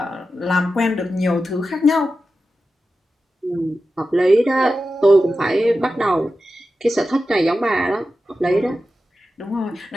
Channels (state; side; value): normal; both; correlation 0.92